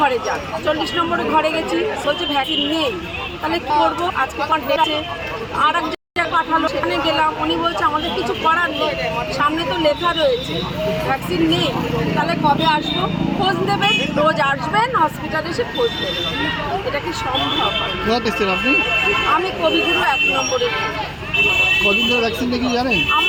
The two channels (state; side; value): identical; both; correlation 1.00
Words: ঘরে যান। 40 নম্বরে ঘরে গেছি, বলছে ভ্যাকসিন নেই। তাহলে কী করবো? আজকে ডেটে আর এক জায়গায় পাঠালো, সেখানে গেলাম, উনি বলছে আমাদের কিছু করার নেই, সামনে তো লেখা রয়েছে ভ্যাকসিন নেই। তাহলে কবে আসবো? খোঁজ দেবেন, রোজ আসবেন হসপিটালে এসে খোঁজ দেবেন, এটা কি সম্ভব? আপনি? আমি কবিগুরু 1 নম্বরে। কদিন ধরে ভ্যাকসিন নাকি জানেন?